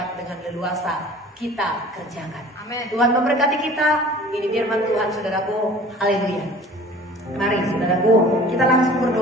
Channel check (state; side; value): normal; both; correlation 0.46